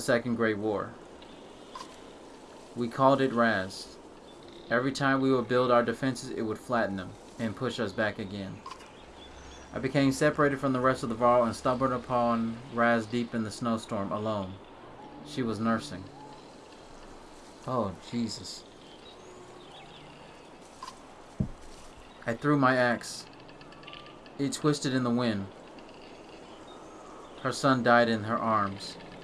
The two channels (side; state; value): both; identical; correlation 1.00